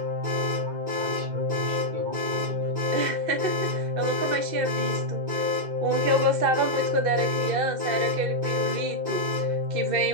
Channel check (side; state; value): left; late; 2.0 ms